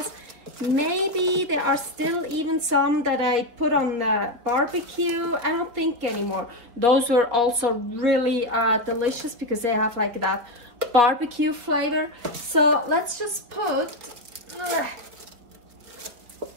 Maybe there are still even some that I put on the barbecue. I don't think anymore. Those were also really delicious because they have like that barbecue flavor. So let's just put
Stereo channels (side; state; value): left; late; 4.2 ms